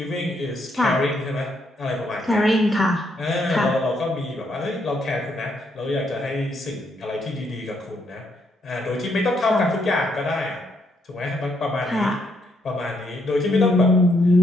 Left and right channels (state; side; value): normal; both; correlation 0.75